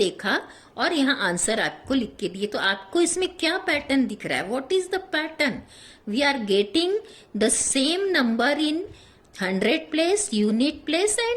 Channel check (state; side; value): identical; both; correlation 1.00